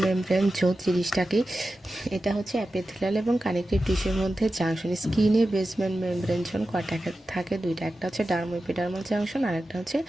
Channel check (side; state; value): both; normal; correlation 0.93